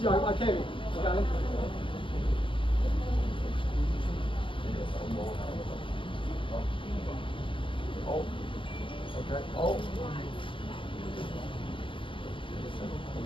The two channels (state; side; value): late; right; 0.25 ms